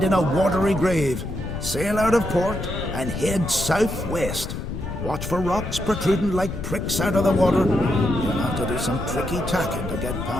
in a watery grave. Sail out of port and head southwest. Watch for rocks protruding like pricks out of the water. You'll have to do some tricky tacking to get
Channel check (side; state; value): left; noise; rumble, 6 dB below the sound